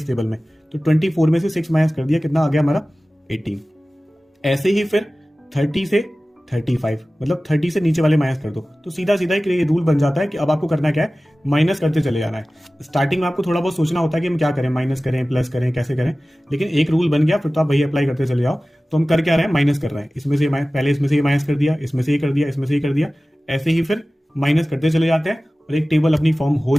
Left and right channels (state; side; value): normal; both; correlation 0.97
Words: टेबल में, तो 24 में से 6 माइनस कर दिया, कितना आ गया हमारा 18। ऐसे ही फिर 30 से 35, मतलब 30 से नीचे वाले माइनस कर दो। तो सीधा सीधा एक रूल बन जाता है कि अब आपको करना क्या है, माइनस करते चले जाना है। स्टार्टिंग में आपको थोड़ा बहुत सोचना होता है कि हम क्या करें, माइनस करें, प्लस करें, कैसे करें, लेकिन एक रूल बन गया, फिर तो आप वही अप्लाई करते चले जाओ। तो हम कर क्या रहे हैं, माइनस कर रहे हैं। इसमें से पहले इसमें से ये माइनस कर दिया, इसमें से ये कर दिया, इसमें से ये कर दिया, ऐसे ही फिर माइनस करते चले जाते हैं, और एक टेबल अपनी फॉर्म हो